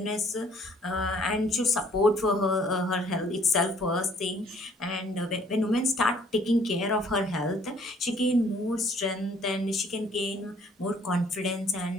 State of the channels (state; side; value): normal; both; correlation 0.59